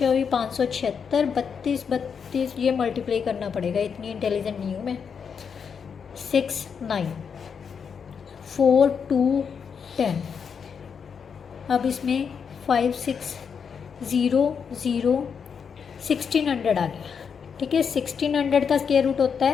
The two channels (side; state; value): right; quieter; 6.6 dB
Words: 576, 32 32, ये मल्टीप्लाई करना पड़ेगा, इतनी इंटेलिजेंट नहीं हूँ मैं, 6 9 4 2 10, अब इसमें 5 6 0 0 1600 आ गया, ठीक है। 1600 का स्क्वायर रूट होता